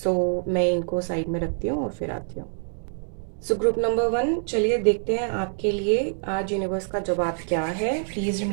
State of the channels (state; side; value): silent; left; digital silence